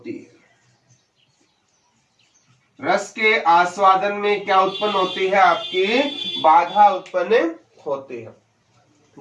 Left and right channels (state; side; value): identical; both; correlation 1.00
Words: है। रस के आस्वादन में क्या उत्पन्न होती है? आपकी बाधा उत्पन्न होती है।